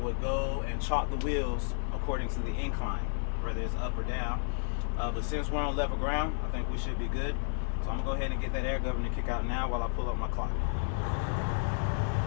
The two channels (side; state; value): right; silent; 57 dB below the other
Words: go and chalk the wheels according to the incline, whether it's up or down. But since we're on level ground, I think we should be good. So I'm gonna go ahead and get that air governor kick out now while I pull up my clock.